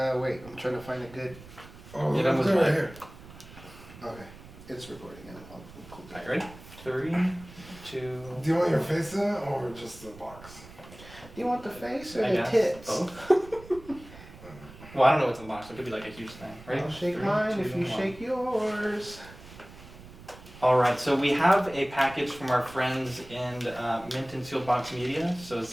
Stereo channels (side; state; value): right; noise; rumble, 18 dB below the sound